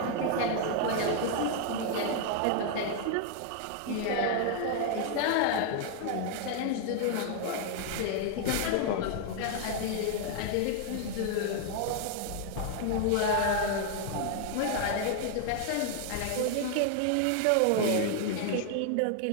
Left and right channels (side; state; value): both; different; correlation 0.00